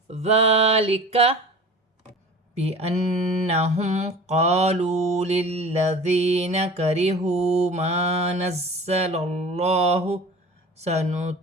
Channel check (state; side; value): normal; both; correlation 0.39